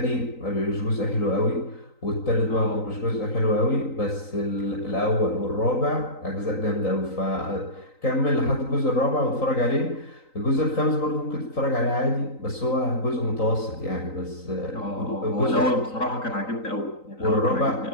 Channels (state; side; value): late; right; 3.9 ms